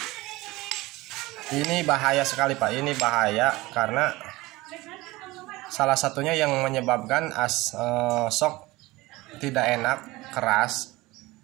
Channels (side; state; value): left; quieter; 20.2 dB